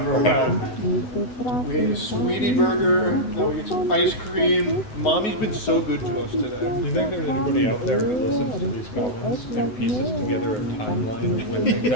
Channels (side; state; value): right; late; 9.5 ms